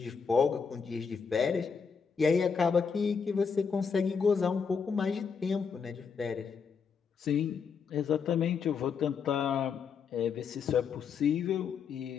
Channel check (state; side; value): quieter; right; 6.0 dB